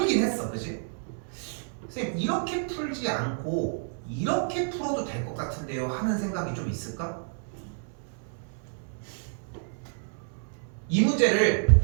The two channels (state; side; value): silent; left; 58 dB below the other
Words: 했어, 그지? 선생님 이렇게 풀지 않고 이렇게 풀어도 될 것 같은데요 하는 생각이 좀 있을까? 이 문제를